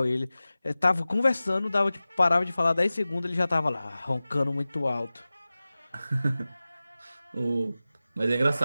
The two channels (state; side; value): inverted; both; correlation -0.97